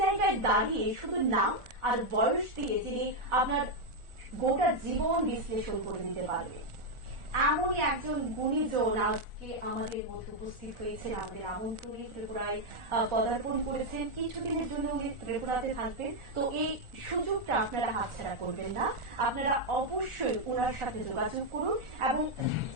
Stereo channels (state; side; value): late; left; 1.4 ms